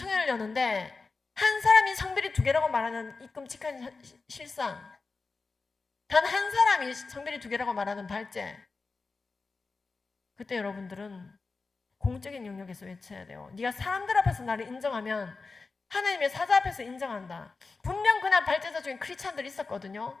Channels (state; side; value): quieter; right; 4.1 dB